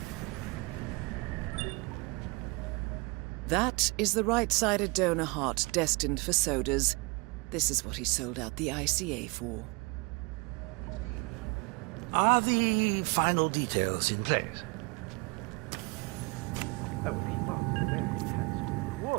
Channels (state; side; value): quieter; left; 27.8 dB